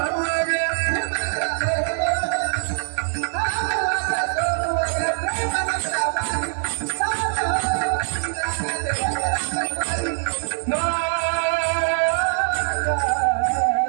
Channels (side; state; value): left; silent; digital silence